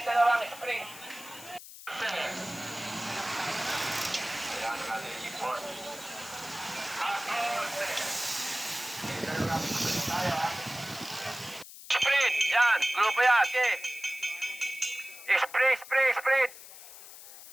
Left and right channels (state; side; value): noise; left; hiss, 15 dB below the sound